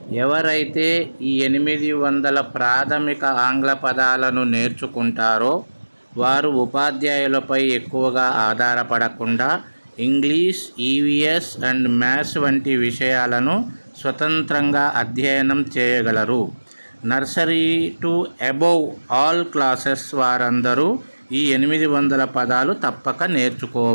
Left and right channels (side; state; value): both; inverted; correlation -1.00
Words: ఎవరైతే ఈ 800 ప్రాథమిక ఆంగ్ల పదాలను నేర్చుకుంటారో వారు ఉపాధ్యాయులపై ఎక్కువగా ఆధారపడకుండా ఇంగ్లీష్, ఈవీఎస్ అండ్ మ్యాథ్స్ వంటి విషయాలను స్వతంత్రంగా అధ్యయనం చేయగలరు. Nursery to above all classes వారందరూ ఈ 800 పదాలు తప్పక